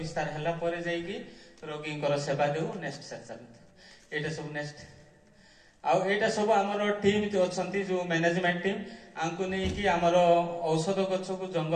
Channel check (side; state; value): both; identical; correlation 1.00